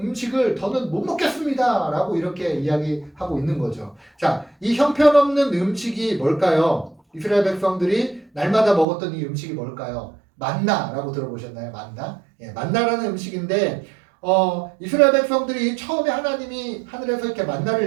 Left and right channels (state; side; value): drops out; left; at 8.8 s